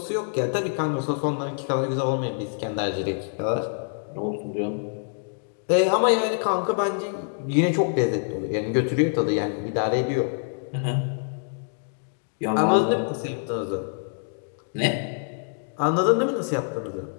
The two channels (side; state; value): right; silent; digital silence